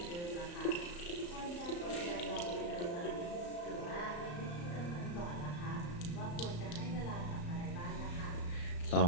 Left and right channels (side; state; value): right; late; 34 ms